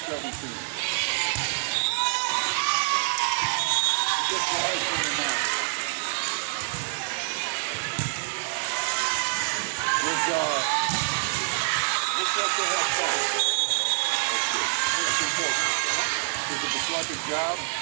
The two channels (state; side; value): silent; left; digital silence